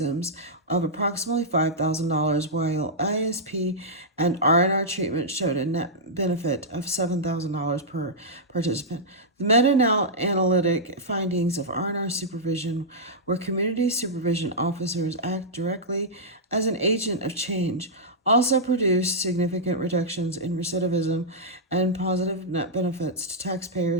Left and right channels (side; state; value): both; normal; correlation -0.10